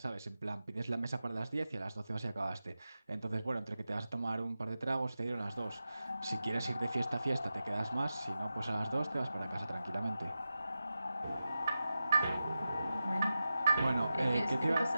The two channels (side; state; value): both; inverted; correlation -0.92